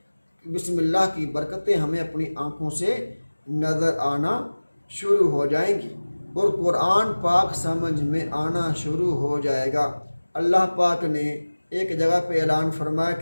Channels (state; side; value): inverted; both; correlation -1.00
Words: بسم اللہ کی برکتیں ہمیں اپنی آنکھوں سے نظر آنا شروع ہو جائیں گی، اور قرآن پاک سمجھ میں آنا شروع ہو جائے گا۔ اللہ پاک نے ایک جگہ پہ اعلان فرمایا